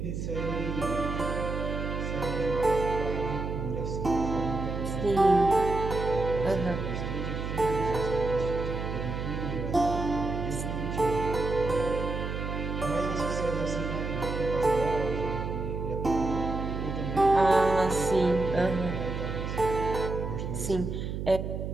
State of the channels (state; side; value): noise; right; hum, 4 dB below the sound